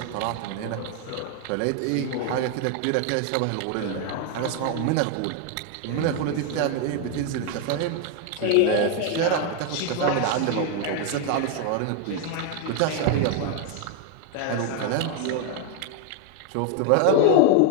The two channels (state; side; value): different; both; correlation 0.00